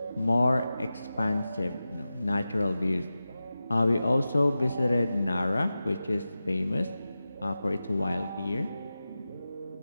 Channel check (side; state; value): both; inverted; correlation -0.94